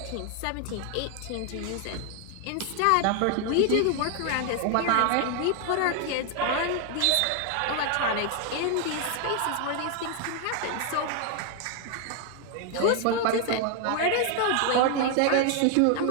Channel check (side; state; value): both; different; correlation 0.01